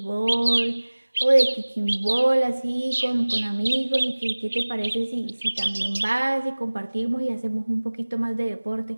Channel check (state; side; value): inverted; both; correlation -1.00